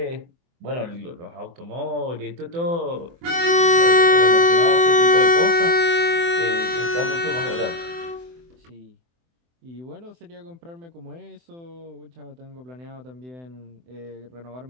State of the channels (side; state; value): left; late; 24 ms